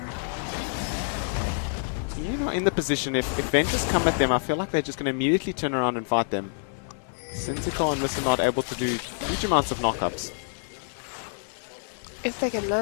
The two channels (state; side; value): silent; right; digital silence